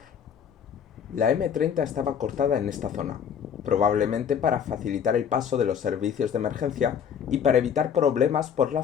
La M30 estaba cortada en esta zona, probablemente para facilitar el paso de los servicios de emergencia y para evitar problemas por la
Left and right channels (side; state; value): right; quieter; 7.8 dB